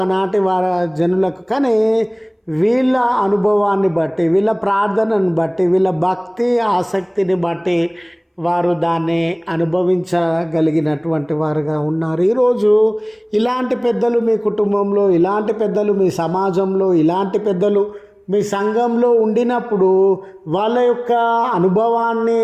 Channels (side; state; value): both; identical; correlation 1.00